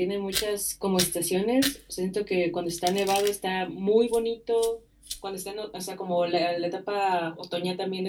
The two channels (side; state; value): both; identical; correlation 1.00